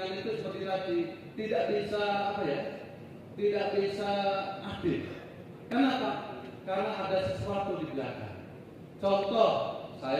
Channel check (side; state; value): both; identical; correlation 1.00